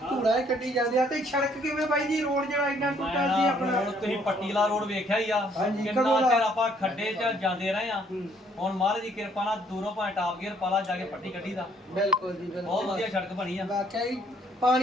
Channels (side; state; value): both; normal; correlation 0.64